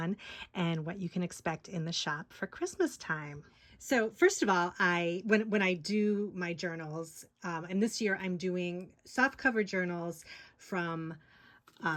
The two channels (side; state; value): both; identical; correlation 1.00